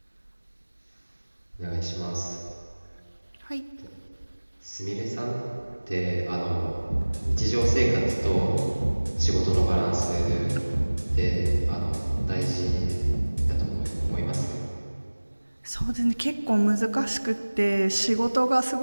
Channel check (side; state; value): both; inverted; correlation -1.00